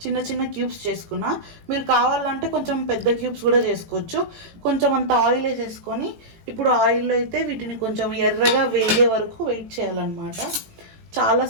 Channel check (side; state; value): left; late; 18 ms